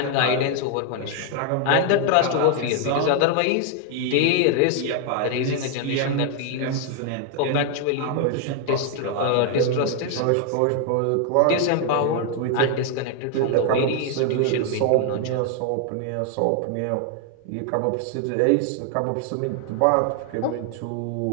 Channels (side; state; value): both; different; correlation 0.00